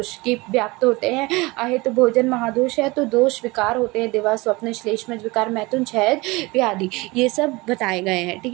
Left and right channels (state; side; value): quieter; left; 23.3 dB